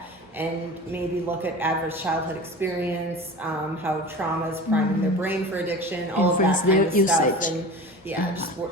and maybe look at adverse childhood experience, how trauma is priming their brain for addiction, all of that Influence kind their of stuff, usage. and yeah, just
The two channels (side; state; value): both; normal; correlation 0.34